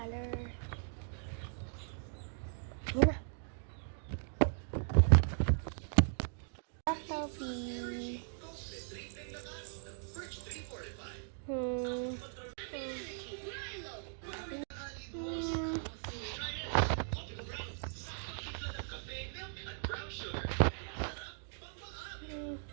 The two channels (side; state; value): left; silent; digital silence